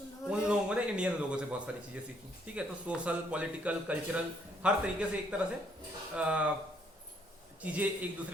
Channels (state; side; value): normal; both; correlation 0.68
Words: लोगों ने इंडियन लोगों से बहुत सारी चीजें सीखी, ठीक है। तो सोशल, पॉलिटिकल, कल्चरल, हर तरीके से एक तरह से चीजें एक